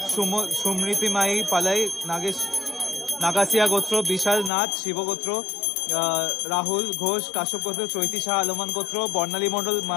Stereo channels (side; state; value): right; drops out; at 4.5 s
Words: সুমৃতিমাই পালাই নাগাসিয়া গোত্র, বিশাল নাথ শিব গোত্র, রাহুল ঘোষ কাশ্যপ গোত্র, চৈতি শাহ আলমান গোত্র, বর্ণালী মণ্ডল